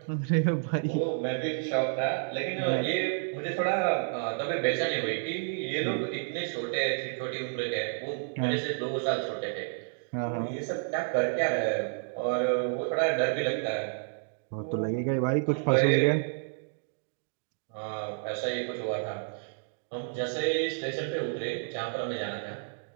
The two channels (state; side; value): silent; left; digital silence